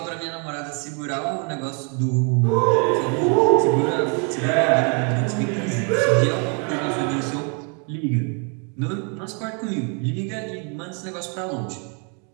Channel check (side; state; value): left; quieter; 37.4 dB